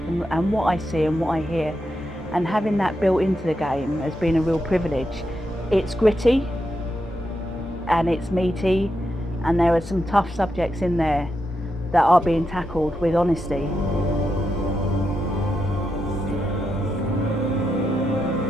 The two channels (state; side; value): normal; both; correlation 0.85